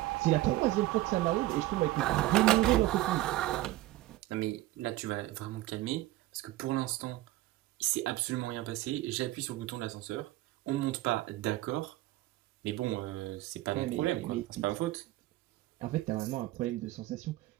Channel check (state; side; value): quieter; left; 16.8 dB